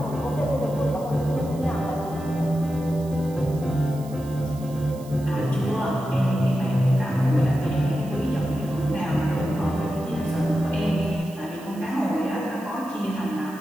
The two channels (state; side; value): noise; right; hiss, 22 dB below the sound